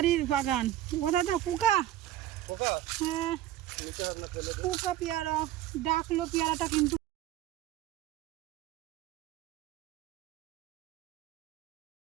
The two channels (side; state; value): left; quieter; 13.2 dB